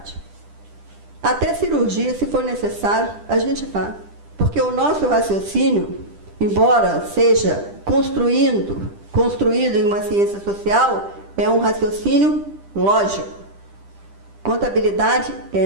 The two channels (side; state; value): left; late; 10 ms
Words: Até cirurgia, se for necessário, a gente faz. Porque o nosso raciocínio, embora seja construído em uma ciência social, é um raciocínio lógico. Contabilidade